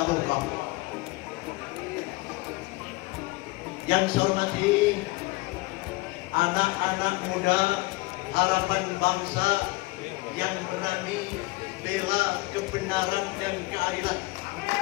Yang saya hormati anak-anak muda harapan bangsa yang berani bela kebenaran dan keadilan,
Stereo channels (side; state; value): right; quieter; 22.3 dB